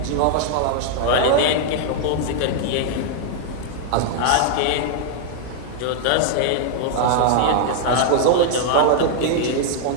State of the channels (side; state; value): both; different; correlation -0.01